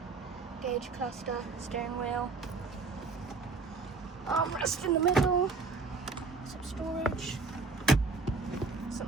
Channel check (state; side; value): quieter; left; 4.3 dB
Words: gauge cluster, steering wheel, armrest in the middle, some storage, some